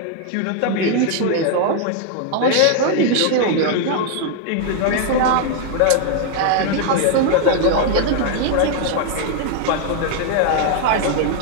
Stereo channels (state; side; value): different; both; correlation 0.00